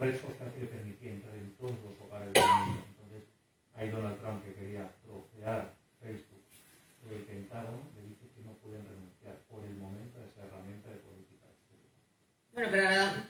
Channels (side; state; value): both; identical; correlation 1.00